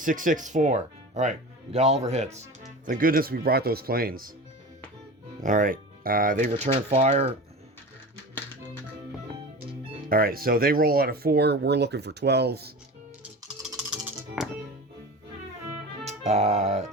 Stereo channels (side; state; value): both; normal; correlation 0.32